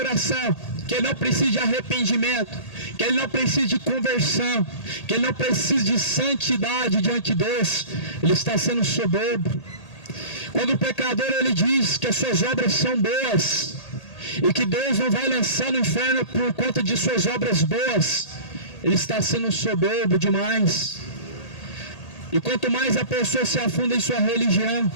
que ele não precisa de arrependimento, que ele não precisa de conversão, que ele não precisa de santidade diante de Deus, ele está sendo soberbo. Quando o pecador, ele diz que as suas obras são boas e que Deus não vai lançar no inferno por conta de suas obras boas, ele está sendo soberbo demais. E quanto mais a pessoa se afunda em sua religião,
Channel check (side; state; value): right; late; 1.8 ms